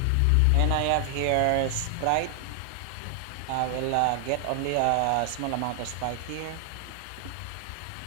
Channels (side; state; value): both; different; correlation 0.00